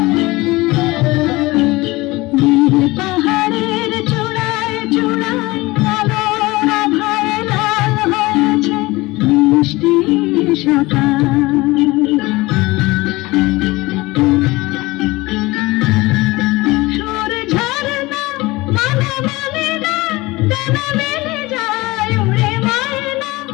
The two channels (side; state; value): right; quieter; 21.2 dB